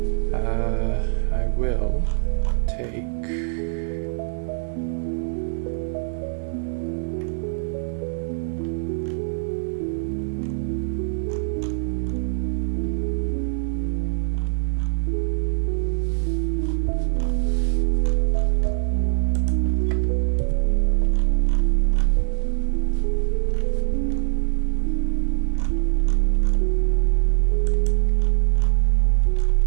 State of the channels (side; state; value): left; silent; digital silence